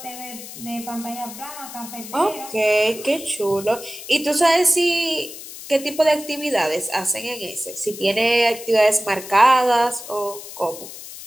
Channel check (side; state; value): left; noise; hiss, 13 dB below the sound